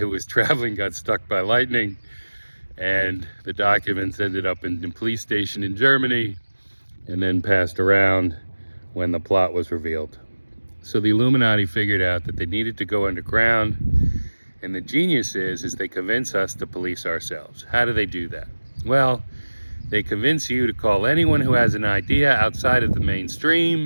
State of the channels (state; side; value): inverted; both; correlation -1.00